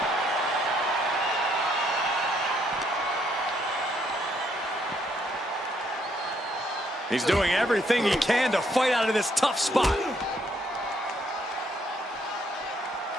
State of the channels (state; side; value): normal; both; correlation 0.71